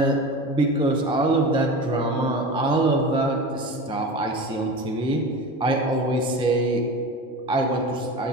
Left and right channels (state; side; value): normal; both; correlation 0.30